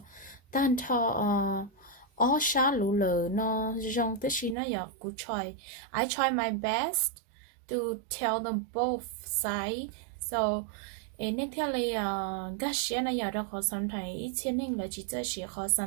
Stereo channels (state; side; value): drops out; left; at 4.5 s